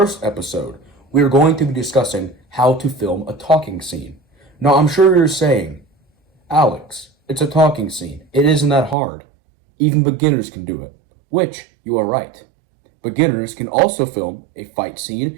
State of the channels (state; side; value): drops out; left; at 9.0 s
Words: episode, we are going to be discussing how to film a talking scene. Now I'm sure you're saying, Alex, it's a talking scene. It isn't that hard. Even beginners can do it. Which, you are right. Beginners can also film a fight